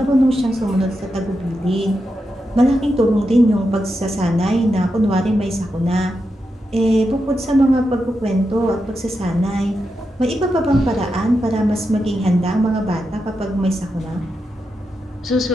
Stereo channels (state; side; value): normal; both; correlation 0.87